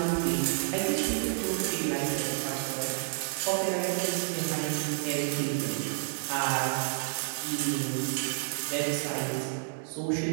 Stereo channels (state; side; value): silent; left; digital silence